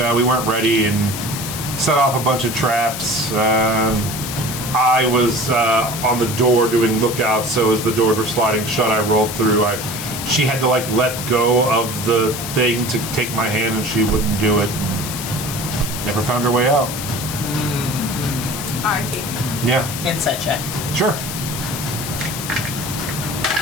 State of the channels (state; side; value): noise; left; hiss, 7 dB below the sound